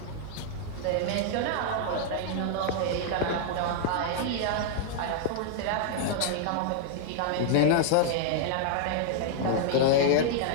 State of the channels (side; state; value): both; different; correlation -0.01